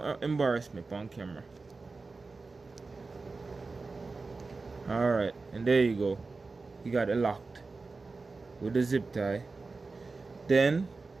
embarrass me on camera. Alright, and there you go. You got it locked with the zip tie. Then,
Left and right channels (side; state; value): left; quieter; 3.9 dB